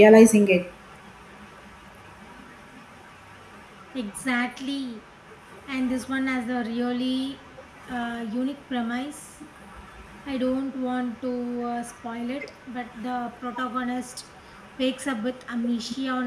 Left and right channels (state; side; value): identical; both; correlation 1.00